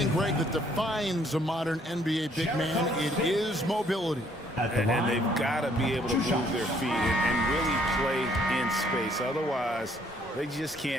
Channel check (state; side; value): normal; both; correlation 0.65